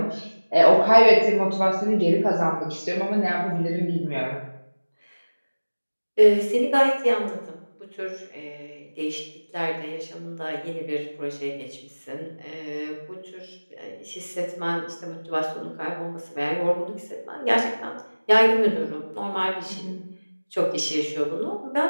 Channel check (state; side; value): inverted; both; correlation -1.00